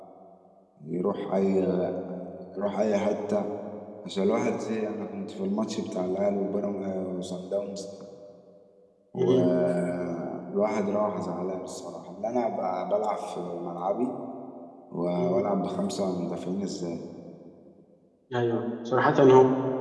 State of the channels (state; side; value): identical; both; correlation 1.00